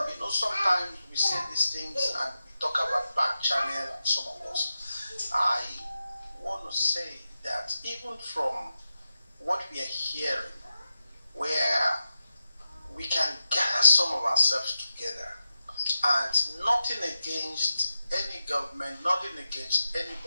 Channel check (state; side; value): inverted; both; correlation -0.90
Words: sometimes we say these things and we talk about back channel and some of us. I want to say that even from what we are hearing, where we can gather some of ourselves together, and nothing against any government, nothing against